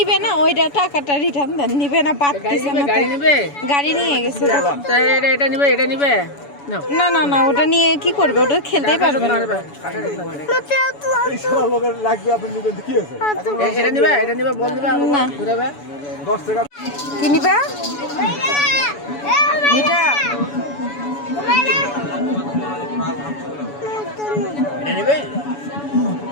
না, ওইটা টাকাটা রিটার্ন দেন। নিবে না, পারতেছে না। গাড়ি নেবে? গাড়ি নিয়ে গেছে। এটা নিবে, এটা নিবে নাও। না না না, ওটা নিয়ে কি করবে? ওটা খেলতেই পারবে না। এটা নিবে, এটা নিবে, বল নিবে, না। ঘুরাবে 10 টাকা। কি নিবা? এটা এটা নিবে।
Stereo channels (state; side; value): late; right; 7.0 ms